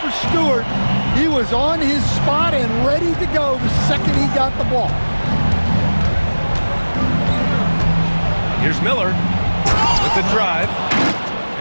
for Stewart. He was on his spot and ready to go the second he got the ball. Here's Miller with the drive.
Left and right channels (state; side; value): inverted; both; correlation -1.00